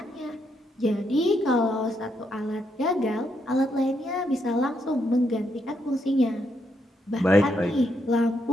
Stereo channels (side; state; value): both; normal; correlation 0.78